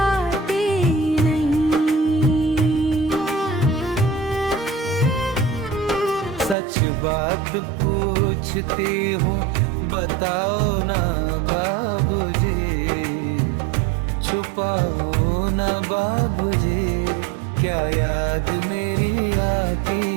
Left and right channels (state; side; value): drops out; left; at 6.6 s